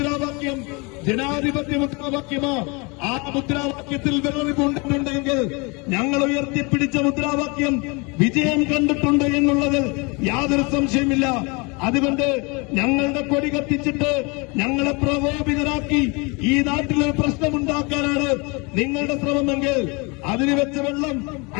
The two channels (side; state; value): right; quieter; 29.1 dB